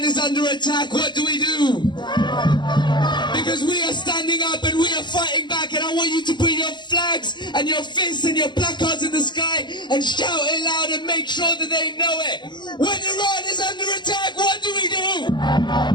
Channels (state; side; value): late; right; 0.22 ms